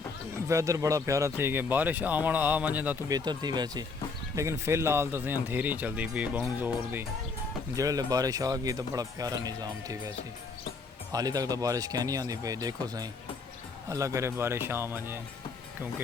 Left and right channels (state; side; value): quieter; right; 4.4 dB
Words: वैदर बड़ा प्यारा थी कि बारिश आवन आ वञे तो बेहतर थी वैसे, लेकिन फिलहाल तो अंधेरी चलती पई बहुत ज़ोर दी। जेल्लै बारिश आ गई तो बड़ा प्यारा निज़ाम थी वैसे। हाली तक तो बारिश क्या नहीं आती पई, देखो सही अल्लाह करे बारिश आ वञे,